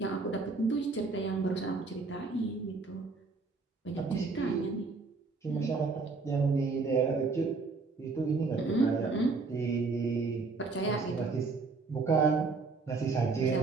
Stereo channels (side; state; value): left; quieter; 4.1 dB